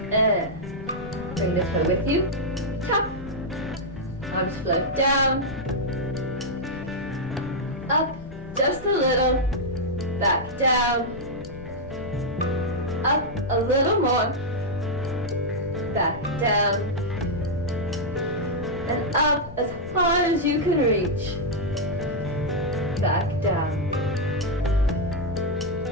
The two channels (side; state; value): left; noise; rumble, 15 dB below the sound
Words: And bring the toe with you. Tap. Arms float down. Up just a little. Back down. Up a little more. Back down. And up as far as you can reach. Back down.